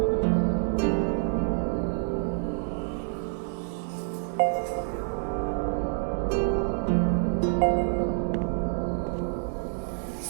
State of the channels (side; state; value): left; silent; 60 dB below the other